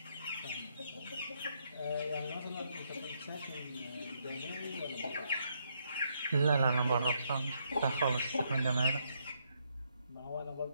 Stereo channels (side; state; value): both; inverted; correlation -0.75